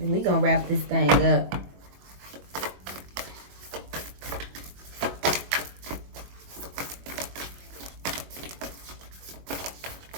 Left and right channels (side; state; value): left; late; 22 ms